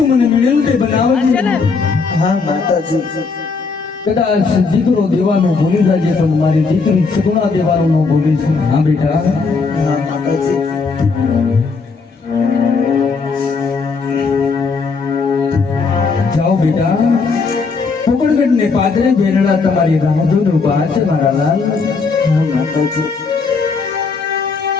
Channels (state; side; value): quieter; right; 4.6 dB